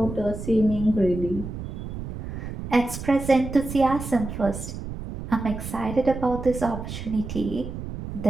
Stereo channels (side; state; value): right; noise; rumble, 8 dB below the sound